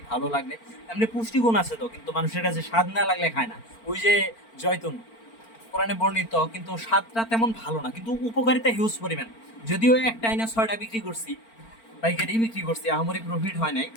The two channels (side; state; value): right; late; 4.4 ms